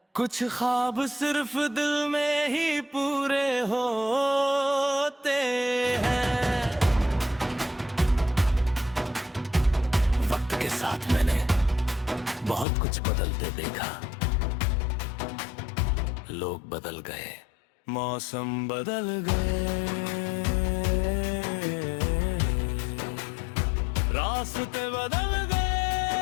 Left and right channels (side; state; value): right; drops out; at 12.7 s